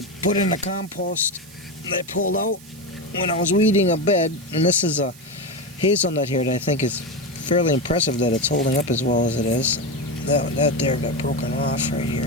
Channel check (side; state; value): right; noise; hiss, 21 dB below the sound